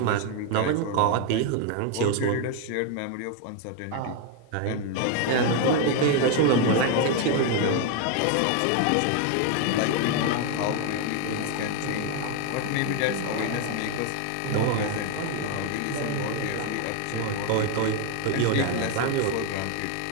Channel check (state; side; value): different; both; correlation 0.01